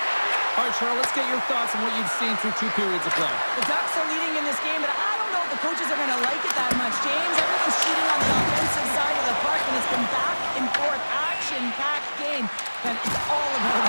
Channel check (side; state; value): both; inverted; correlation -1.00